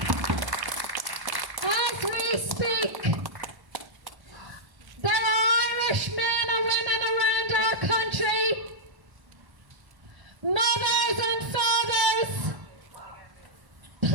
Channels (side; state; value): left; late; 1.1 ms